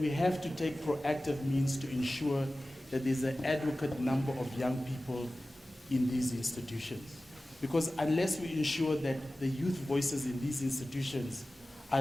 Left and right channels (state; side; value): normal; both; correlation 0.96